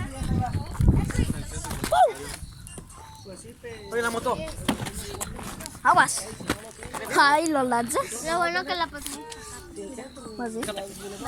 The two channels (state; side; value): identical; both; correlation 1.00